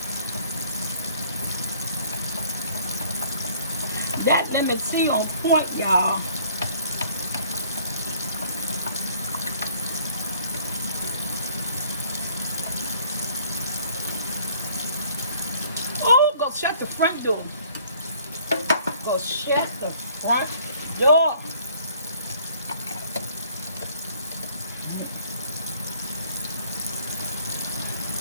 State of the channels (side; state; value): both; inverted; correlation -0.58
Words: That lemon tea on point, y'all. Oh, go shut the front door. Go shut the front door.